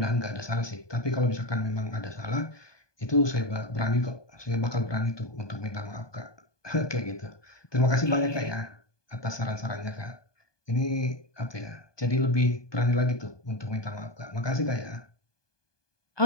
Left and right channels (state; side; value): late; right; 1.2 ms